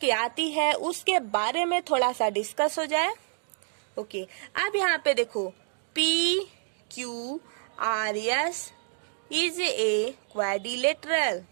आती है उसके बारे में थोड़ा सा डिस्कस हो जाए, ओके। अब यहाँ पे देखो P Q R S is a quadrilateral,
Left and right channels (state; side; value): silent; left; digital silence